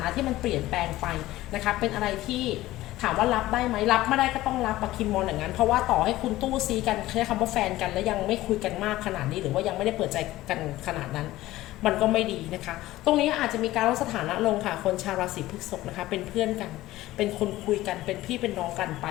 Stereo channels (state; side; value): quieter; right; 16.4 dB